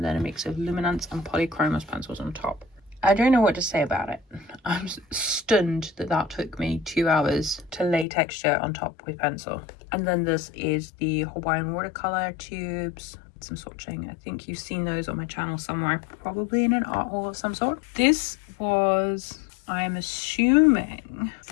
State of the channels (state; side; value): drops out; right; at 8.1 s